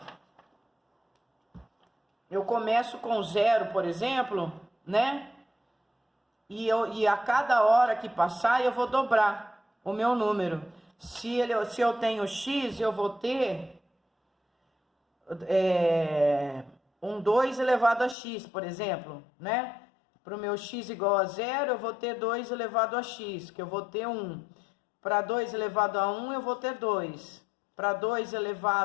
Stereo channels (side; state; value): right; drops out; at 18.2 s